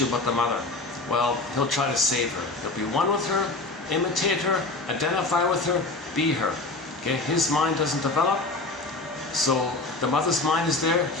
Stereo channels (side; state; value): right; quieter; 3.2 dB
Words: about the mother? Well, he'll try to save her. He'll be one with her, imitate her, identify with her, be her. Okay, his mind doesn't develop, so the mother's mind is there.